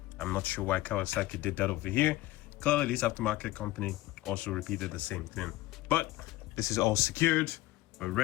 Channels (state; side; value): quieter; right; 17.5 dB